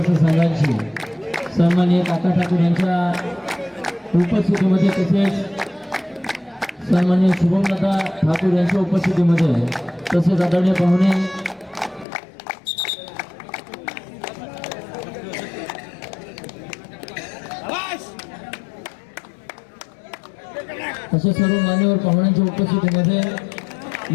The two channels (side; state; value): right; drops out; at 12.1 s